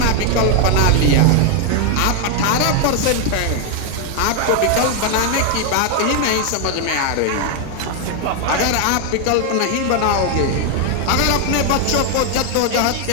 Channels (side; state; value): both; different; correlation 0.01